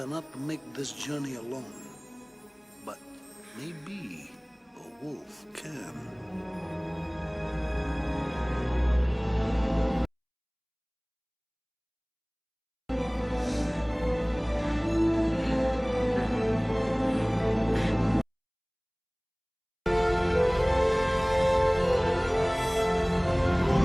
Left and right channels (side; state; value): both; identical; correlation 1.00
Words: make this journey alone. But maybe a wolf can.